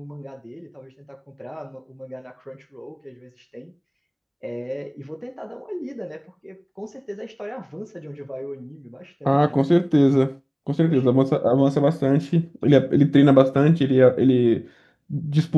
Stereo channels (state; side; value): identical; both; correlation 1.00